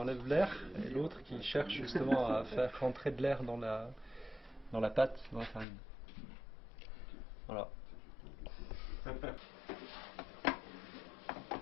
l'air et l'autre qui cherche justement à faire rentrer de l'air dans la pâte, dans la farine. Voilà.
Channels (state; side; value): drops out; right; at 5.7 s